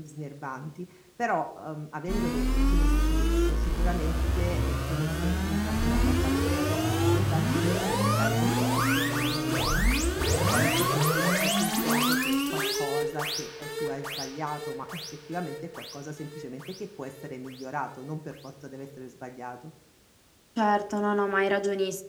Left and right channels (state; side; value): identical; both; correlation 1.00